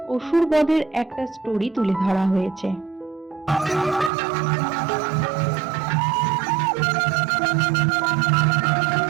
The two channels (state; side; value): drops out; left; at 4.1 s